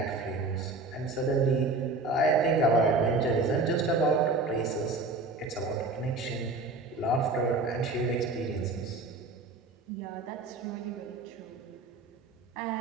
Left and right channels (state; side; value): quieter; left; 3.4 dB